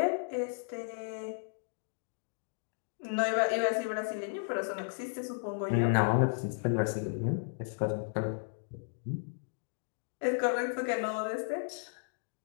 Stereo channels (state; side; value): silent; right; digital silence